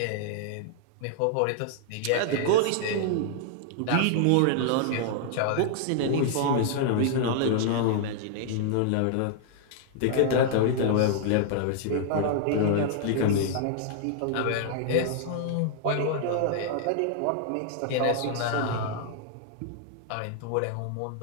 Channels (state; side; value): different; both; correlation -0.01